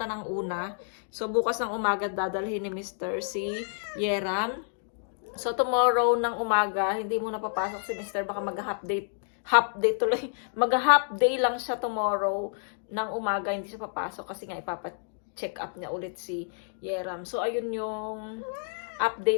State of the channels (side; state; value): right; silent; digital silence